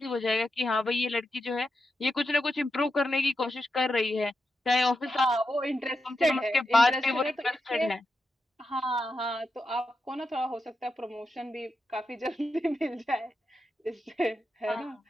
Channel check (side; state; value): both; normal; correlation 0.87